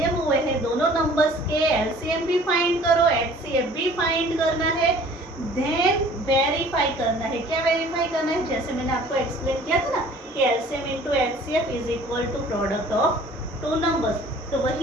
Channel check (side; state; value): both; normal; correlation 0.51